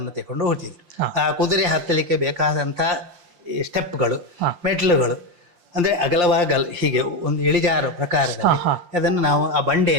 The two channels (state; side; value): late; left; 5.7 ms